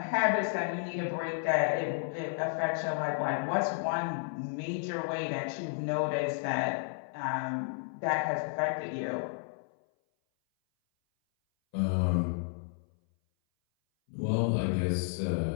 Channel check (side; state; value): right; silent; 56 dB below the other